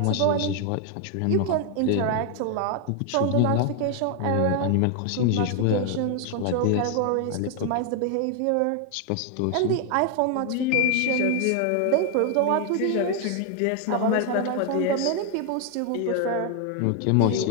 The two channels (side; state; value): both; different; correlation 0.00